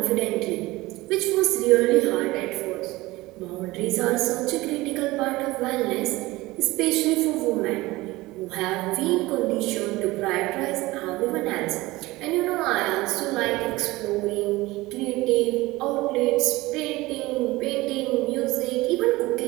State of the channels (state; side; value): quieter; left; 19.9 dB